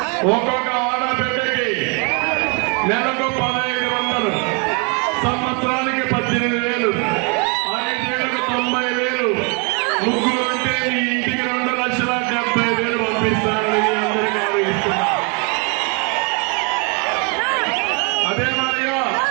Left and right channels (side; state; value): left; quieter; 34.5 dB